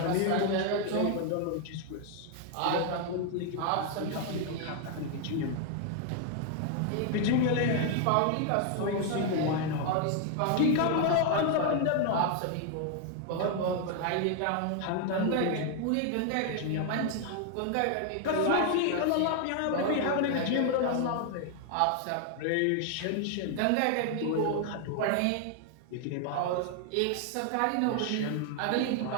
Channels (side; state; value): both; different; correlation 0.00